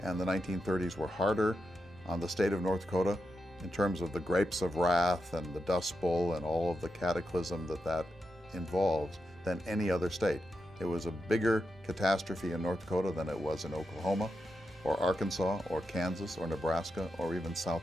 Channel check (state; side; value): normal; both; correlation 0.87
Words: and the 1930s were harder on the state of North Dakota in terms of the grapes of wrath and the Dust Bowl and all of the cataclysm that involves than any other state. It was a bigger catastrophe in North Dakota than it was in Oklahoma or Arkansas or Kansas or Nebraska or even